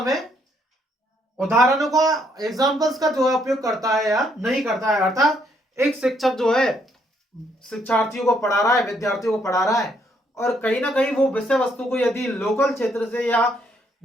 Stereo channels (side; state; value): both; normal; correlation 0.71